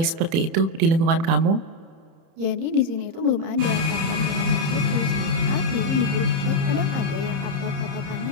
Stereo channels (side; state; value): left; late; 30 ms